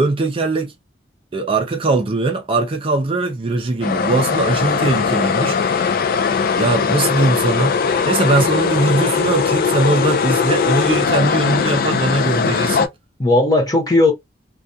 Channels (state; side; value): normal; both; correlation 0.31